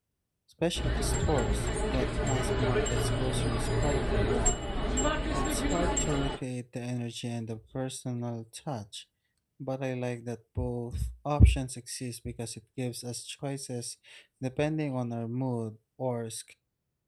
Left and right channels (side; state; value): both; identical; correlation 1.00